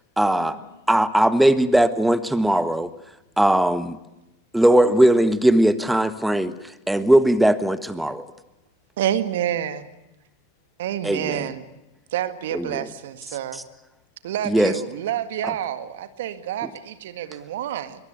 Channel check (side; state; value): both; normal; correlation 0.82